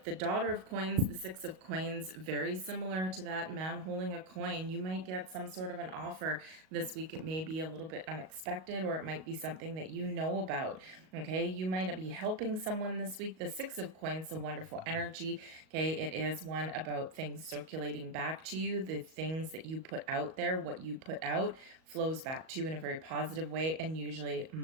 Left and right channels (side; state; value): left; late; 38 ms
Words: Daughter of Coins, the Six of Coins, very similar to that man holding a coin. You might get some sort of an offer this week. It may be a little bit unexpected, or it might be something that you know about, okay? You might be helping someone this week. The Six of Coins, a wonderful energy, okay? It is one about things circulating back to you. The things that you put out there, what you put out, flows back to you in a very positive way and usually